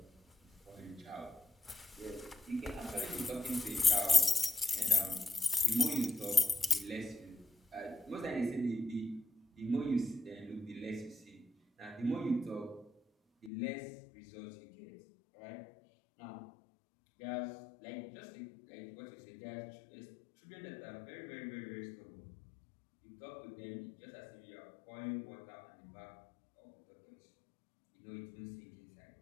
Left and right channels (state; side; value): drops out; right; at 13.5 s